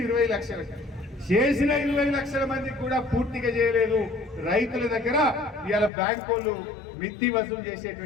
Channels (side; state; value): right; drops out; at 5.9 s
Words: 20 లక్షలకి. చేసిన 20 లక్షల మందికి కూడా పూర్తిగా చేయలేదు. రైతుల దగ్గర ఇవాళ బ్యాంకు వాళ్ళు మిత్తి వసూలు